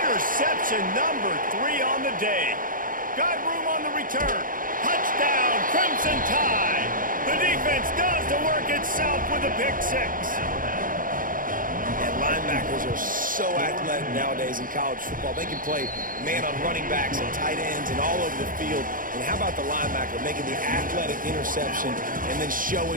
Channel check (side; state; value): left; late; 0.40 ms